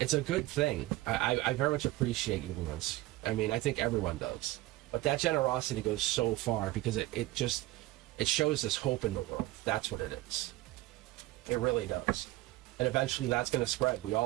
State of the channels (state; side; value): quieter; left; 18.0 dB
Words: a good thing. I very much appreciate you, Lawrence. I mean, I think everyone does. But that generosity goes so far because it shows us hope in the world. That's what it is. It really does. And eventually that's going to spread. We